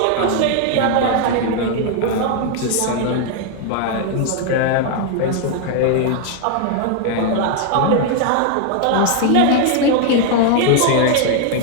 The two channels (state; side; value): different; both; correlation 0.00